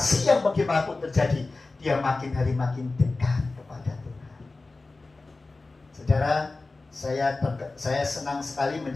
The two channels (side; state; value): right; quieter; 3.4 dB